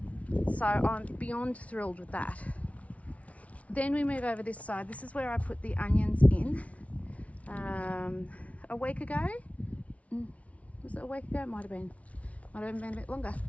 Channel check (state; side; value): late; right; 0.066 ms